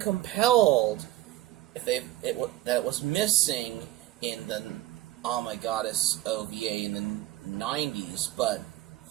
if that was missing in the Oh My Goddess OVA in the 90s, but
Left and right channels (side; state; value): left; quieter; 15.6 dB